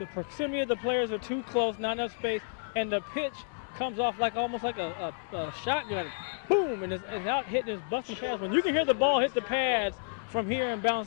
proximity of the players are too close, not enough space, and the pitch comes off like almost like a shotgun. Boom, and it's out hitting his busting pads. When you can hear the ball hit the pads from here and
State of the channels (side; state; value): right; silent; digital silence